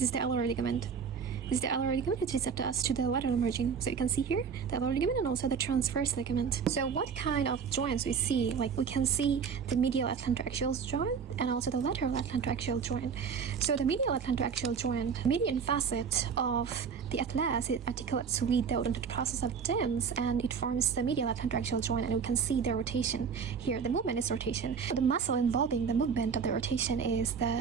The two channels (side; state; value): left; quieter; 6.3 dB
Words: is the alar ligament. This is the alar ligament, which is attached to the lateral margin. So you can see here the alar ligament and also the transverse ligament. So what kind of joints we see? Like we can see the medial atlantoaxial joint and also the lateral atlantoaxial joint. So the medial atlantoaxial joint, median facet of the atlas, it articulates with the odontoid process of dens, and it forms the medial atlantoaxial joint, and we can see the rotation here. The movement is rotation. The muscle involving the movement of the rotation is